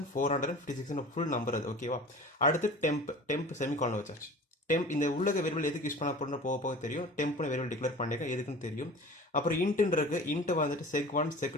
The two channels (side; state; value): both; normal; correlation 0.40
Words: ஃபுல் நம்பர் அது. ஓகேவா? அடுத்து டெம்ப் செமிகாலன் வச்சாச்சு. டெம்ப் இந்த உள்ளக வேரியபிள் எதுக்கு யூஸ் பண்ண போகிறோம் போக தெரியும். டெம்ப்னு வேரியபிள் டிக்ளேர் பண்ணியிருக்கேன், எதுக்குன்னு தெரியும். அப்புறம் இன்ட்டுன்னு இருக்கு. இன்ட்டு வந்துட்டு sec1